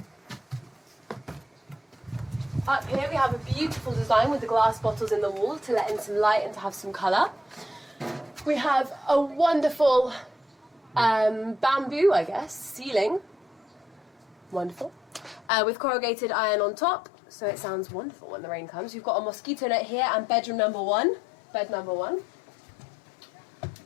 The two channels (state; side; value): drops out; right; at 15.5 s